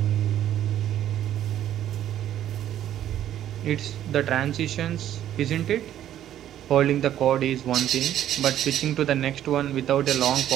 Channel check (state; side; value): quieter; left; 11.5 dB